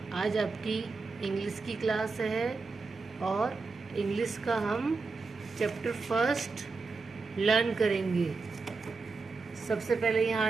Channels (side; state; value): left; quieter; 4.2 dB